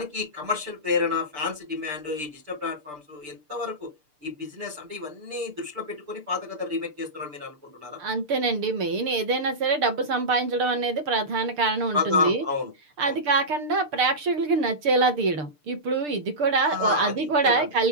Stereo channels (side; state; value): left; late; 6.7 ms